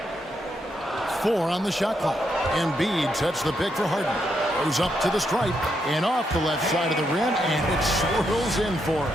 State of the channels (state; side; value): normal; both; correlation 0.80